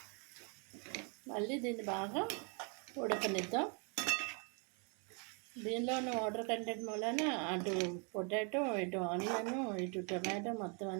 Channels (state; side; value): quieter; left; 36.6 dB